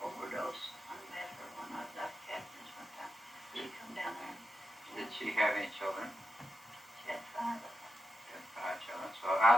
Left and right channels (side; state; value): both; normal; correlation 0.88